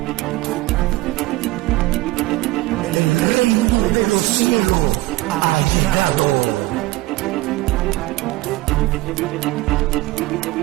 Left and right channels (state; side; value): quieter; left; 18.9 dB